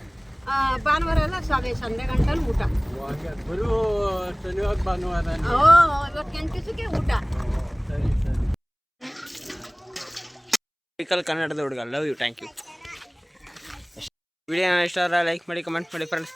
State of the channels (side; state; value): both; identical; correlation 1.00